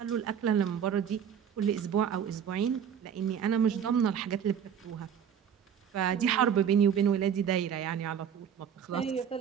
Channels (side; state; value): left; quieter; 8.3 dB